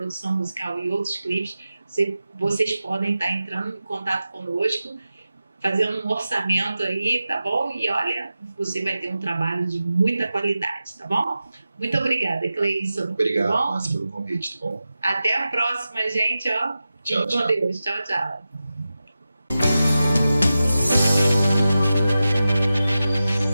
musical e outros clipes, vocês podem estar entrando em contato conosco, fazendo um orçamento aí, tá bom? E olha, você vai ter um trabalho de muita qualidade, tá bom? Muito obrigada, Cleison. Obrigado, Márcia, pelo convite, tá bom? Até a próxima, gente, ó. Tchau, Com Deus. Tchau, tchau.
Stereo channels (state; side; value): inverted; both; correlation -0.93